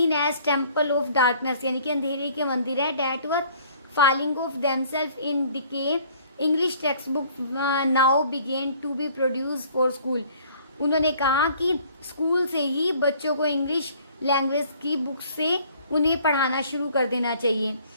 as temple of darkness, यानी कि अंधेरे के मंदिर है। That were falling of themselves in decay। English textbook now began to be produced for school। उन्होंने कहा कि स्कूल से ही बच्चों को इंग्लिश लैंग्वेज की बुक से उन्हें पढ़ाना शुरू कर देना चाहिए।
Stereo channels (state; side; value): inverted; both; correlation -0.56